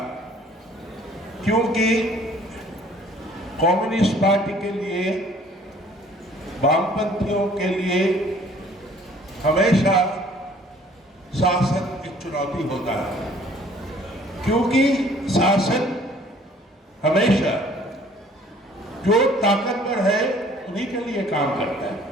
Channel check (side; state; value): both; normal; correlation 0.55